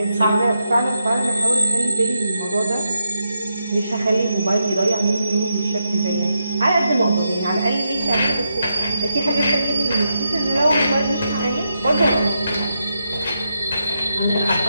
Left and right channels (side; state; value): both; inverted; correlation -0.83